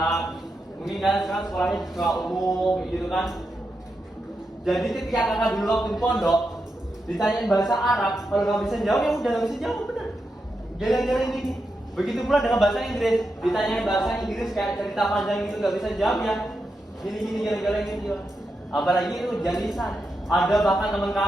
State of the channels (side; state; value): both; normal; correlation 0.87